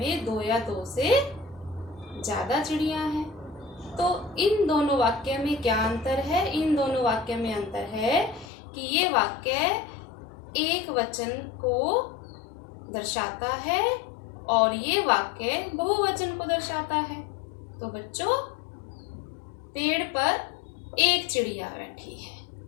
दो या दो से ज्यादा चिड़िया हैं। तो इन दोनों वाक्य में क्या अंतर है? इन दोनों वाक्य में अंतर है कि ये वाक्य एक वचन को दर्शाता है और ये वाक्य बहुवचन को दर्शाता है। तो बच्चों, पेड़ पर एक चिड़िया बैठी है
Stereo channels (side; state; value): right; drops out; at 8.5 s